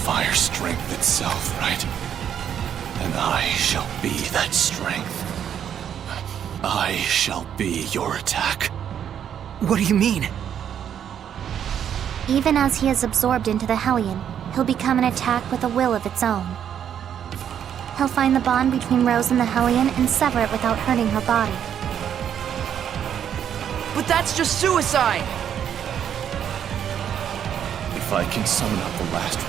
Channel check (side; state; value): left; quieter; 9.1 dB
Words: strength itself, right? And I shall be that strength. I shall be your attack. What do you mean? Even as he is absorbed into the Hellion, he'll become an attack with a will of its own. He'll find the bond between Rose and the Hellion and sever it without hurting her body. But that's just suicide! If I can summon up the last